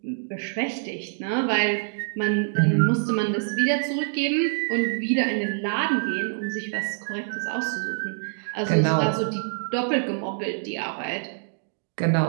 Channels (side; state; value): left; silent; digital silence